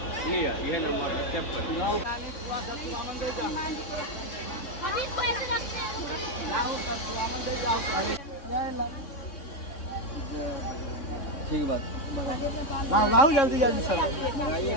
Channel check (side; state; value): right; late; 3.6 ms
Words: लिया? ये नंबर ठीक बात। लाओ जल्दी जल्दी सर बनाइए